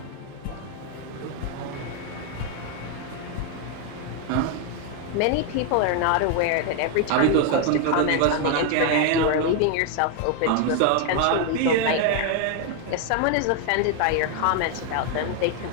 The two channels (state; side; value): different; both; correlation 0.01